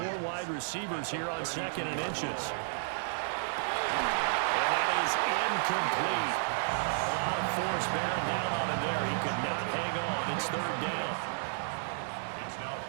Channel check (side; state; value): left; silent; digital silence